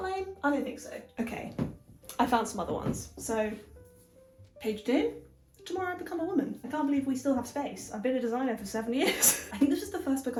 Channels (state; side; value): identical; both; correlation 1.00